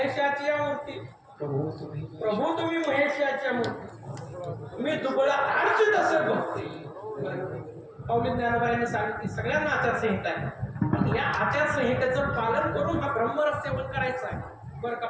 मूर्ती. प्रभू तुम्ही महेशाची मूर्ती. तुम्ही दुबळा आडची तसं भक्ती. पावली ज्ञानोबाईने सांगितली सगळ्यांना आचारसंहिता आहे. या आचारसंहितेचं पालन करून हा ब्रह्मरस सेवन करायचं आहे. बरं का,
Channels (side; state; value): both; identical; correlation 1.00